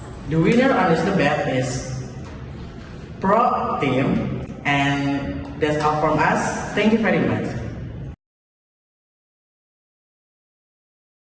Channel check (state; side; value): identical; both; correlation 1.00